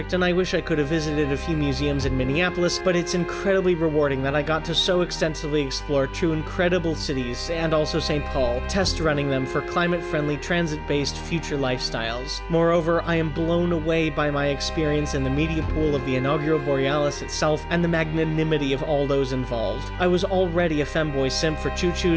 and I wish I could have visited a few museums in Minneapolis, but it's incredibly rewarding that I got to so extensively explore two incredible cities, and also St. Paul, test running them for climate-friendly, transit-based future lifestyles. Moreover, I am blown away by my experience in the media pool of the Inaugural Borealis itself and the magnanimity of all those involved. I was already a femboy simp for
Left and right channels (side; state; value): both; identical; correlation 1.00